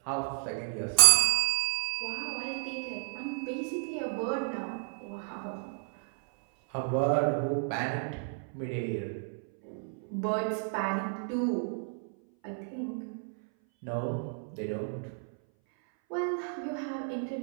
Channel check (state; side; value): silent; left; 57 dB below the other